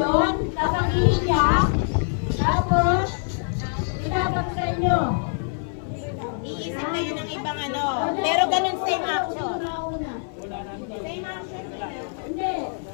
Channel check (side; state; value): right; silent; 58 dB below the other